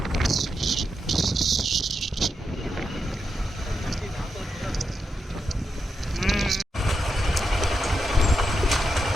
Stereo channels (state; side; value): normal; both; correlation 0.86